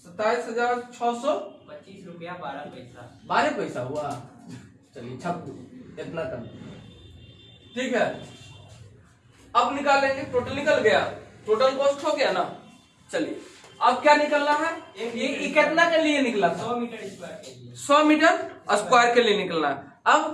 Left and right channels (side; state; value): both; identical; correlation 1.00